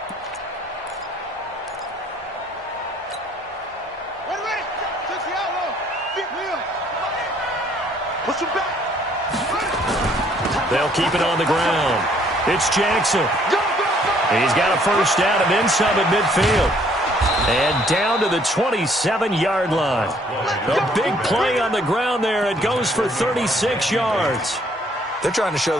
They'll keep it on the ground. It's Jackson. He's got a first down and then some at midfield. And down to the 27-yard line. A big play on the ground there. It goes for 36 yards. They're trying to show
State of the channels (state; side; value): normal; both; correlation 0.63